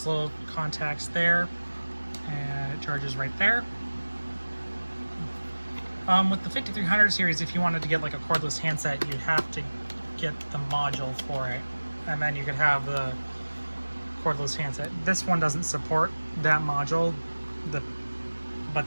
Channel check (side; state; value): both; inverted; correlation -1.00